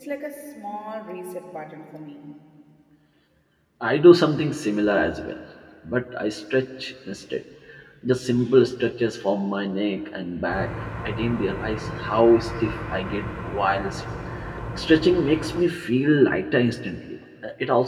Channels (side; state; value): both; identical; correlation 1.00